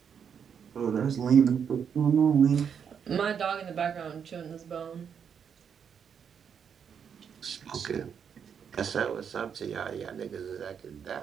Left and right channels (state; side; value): quieter; left; 7.4 dB